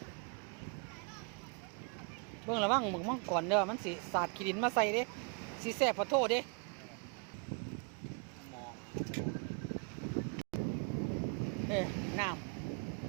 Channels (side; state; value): left; quieter; 35.7 dB